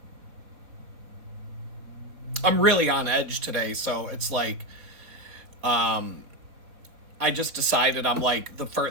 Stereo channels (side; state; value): left; late; 4.1 ms